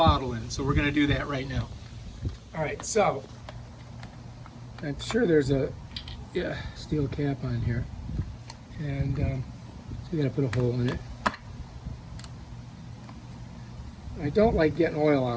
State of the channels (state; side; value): identical; both; correlation 1.00